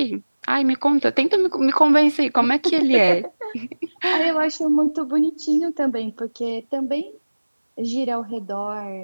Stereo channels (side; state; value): both; inverted; correlation -1.00